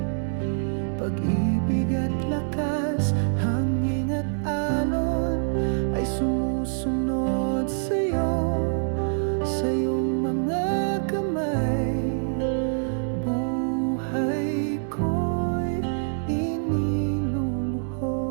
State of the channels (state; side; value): silent; left; digital silence